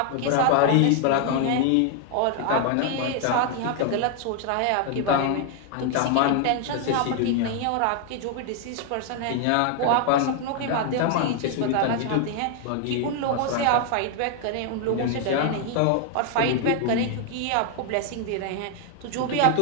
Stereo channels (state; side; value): different; both; correlation 0.00